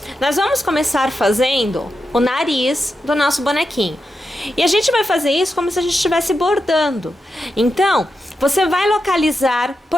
nós vamos começar fazendo o nariz do nosso bonequinho. E a gente vai fazer isso como se a gente estivesse bordando. Então, você vai localizar,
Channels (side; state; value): both; normal; correlation 0.88